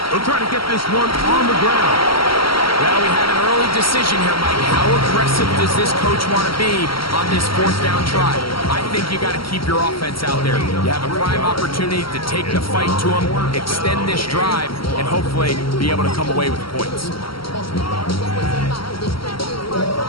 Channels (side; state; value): right; late; 0.74 ms